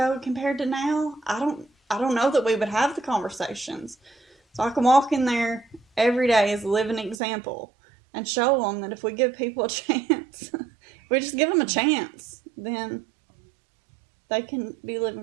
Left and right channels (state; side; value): drops out; left; at 7.2 s